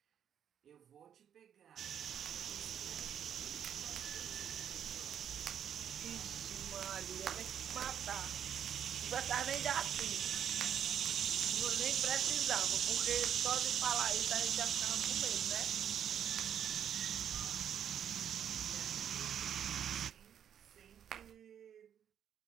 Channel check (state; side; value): quieter; left; 9.0 dB